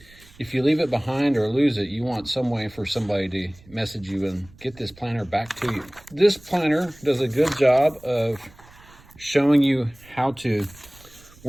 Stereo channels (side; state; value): right; noise; rumble, 24 dB below the sound